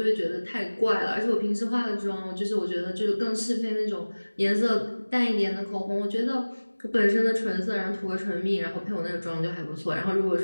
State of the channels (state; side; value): inverted; both; correlation -1.00